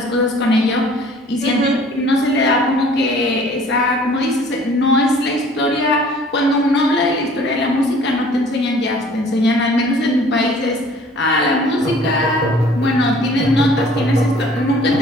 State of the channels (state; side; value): normal; both; correlation 0.52